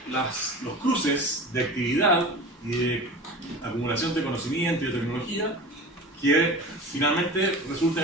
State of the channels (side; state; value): both; normal; correlation 0.34